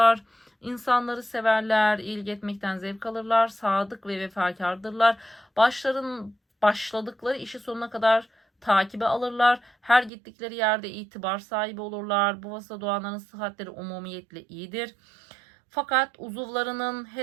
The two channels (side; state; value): left; drops out; at 10.1 s